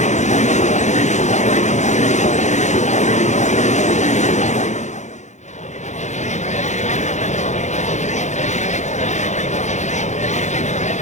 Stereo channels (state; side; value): late; right; 0.34 ms